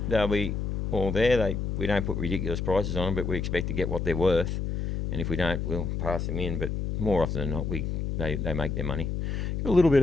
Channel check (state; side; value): noise; left; hum, 2 dB below the sound